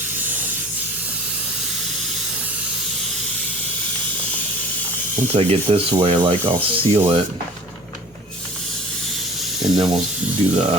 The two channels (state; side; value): normal; both; correlation 0.44